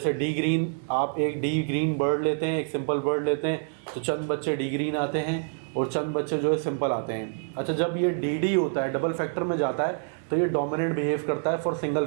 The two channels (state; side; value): silent; left; digital silence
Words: डी ग्रीन, आप एक डी ग्रीन बर्ड लेते हैं, एक सिंपल बर्ड लेते हैं, तो चंद बच्चे डी ग्रीन आते हैं और चंद बच्चे जो है सिंपल आते हैं। अच्छा, जब ये डी होता है, डबल फैक्टर में जाता है, तो ये डोमिनेंट बिहेव करता है फॉर सिंगल